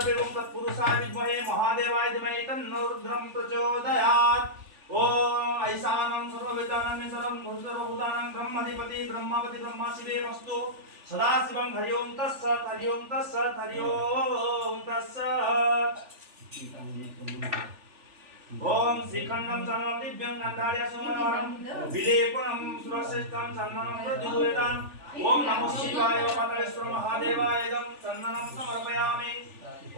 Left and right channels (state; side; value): late; left; 3.4 ms